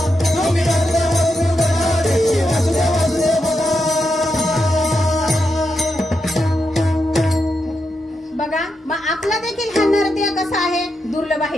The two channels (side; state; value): both; normal; correlation 0.85